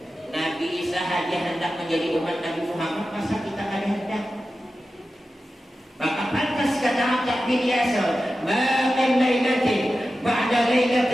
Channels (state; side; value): normal; both; correlation 0.93